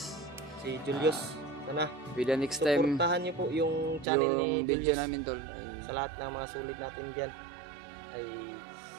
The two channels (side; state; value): left; drops out; at 4.0 s